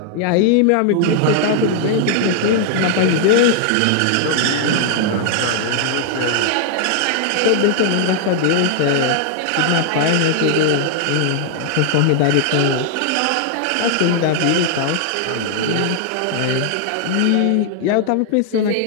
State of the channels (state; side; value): different; both; correlation 0.00